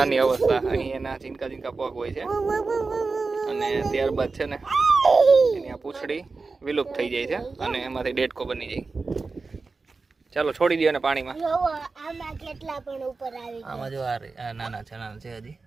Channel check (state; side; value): quieter; left; 4.1 dB